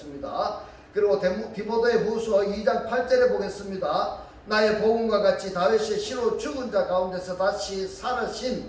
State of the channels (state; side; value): identical; both; correlation 1.00